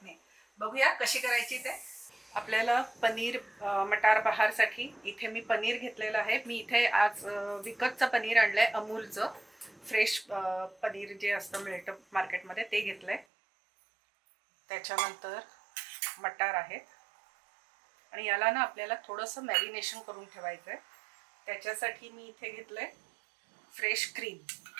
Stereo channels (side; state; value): left; drops out; at 13.2 s